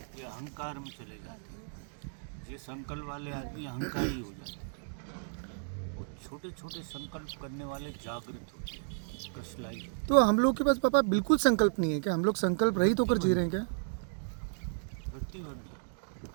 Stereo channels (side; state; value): left; silent; digital silence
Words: ये अहंकार में चले जाते हैं। ये संकल्प वाले आदमी अहंकारी हो जाते हैं। और छोटे छोटे संकल्प करने वाले जागृत होते हैं, कृष्णलाई। तो हम लोग के पास पापा बिल्कुल संकल्प नहीं है क्या? हम लोग संकल्प रहित होकर जी रहे हैं क्या? प्रतिबंध है।